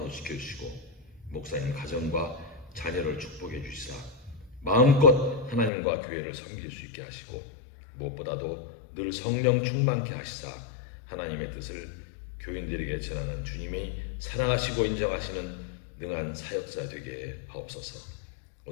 지켜주시고 목사님 가정과 자녀를 축복해 주시사 마음껏 하나님과 교회를 섬길 수 있게 하시고 무엇보다도 늘 성령 충만케 하시사 하나님의 뜻을 교인들에게 전하는 주님이 사랑하시고 인정하시는 능한 사역자 되게 하옵소서.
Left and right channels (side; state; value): right; drops out; at 5.7 s